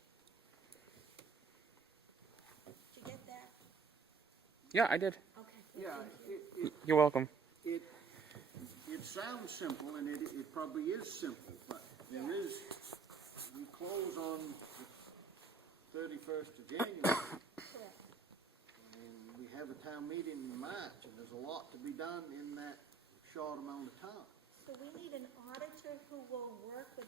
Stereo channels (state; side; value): quieter; left; 5.1 dB